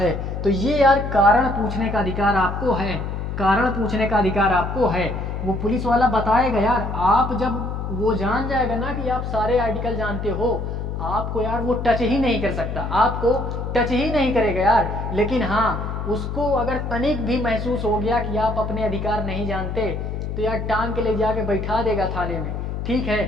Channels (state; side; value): noise; left; hum, 4 dB below the sound